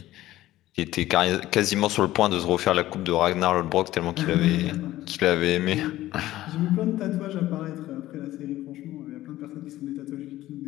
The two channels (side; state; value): right; quieter; 15.3 dB